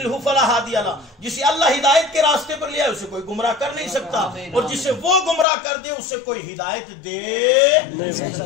فلا ہادی لہ. جسے اللہ ہدایت کے راستے پر لیا اسے کوئی گمراہ کر نہیں سکتا، اور جسے وہ گمراہ کر دے اسے کوئی ہدایت دے نہیں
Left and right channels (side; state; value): right; drops out; at 5.5 s